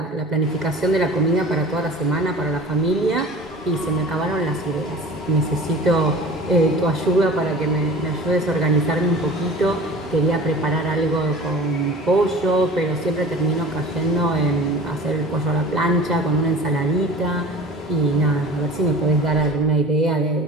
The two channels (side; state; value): both; normal; correlation 0.41